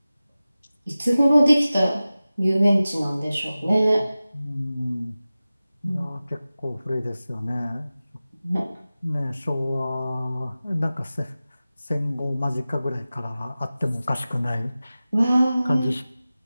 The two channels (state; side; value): inverted; both; correlation -0.96